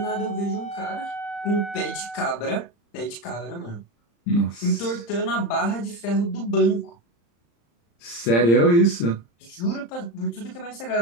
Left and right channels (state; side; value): late; right; 35 ms